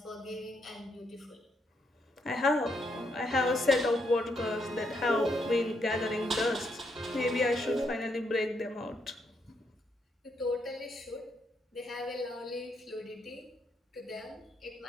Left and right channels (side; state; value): both; normal; correlation 0.77